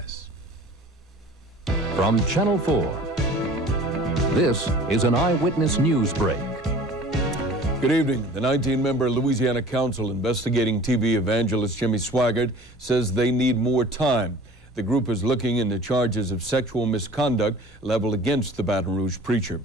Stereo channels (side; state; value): both; normal; correlation 0.45